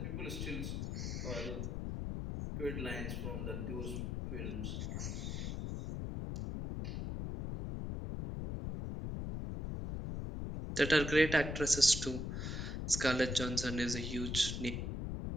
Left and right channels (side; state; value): left; noise; rumble, 3 dB below the sound